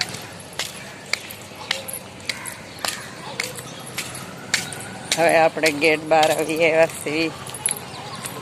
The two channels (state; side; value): identical; both; correlation 1.00